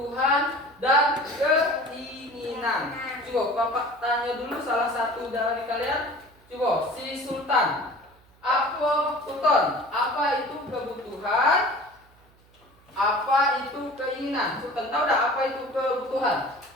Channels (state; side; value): noise; right; hum, 30 dB below the sound